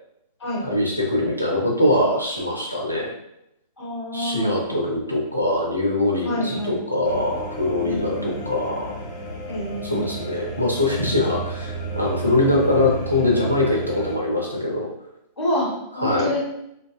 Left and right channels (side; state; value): both; inverted; correlation -0.47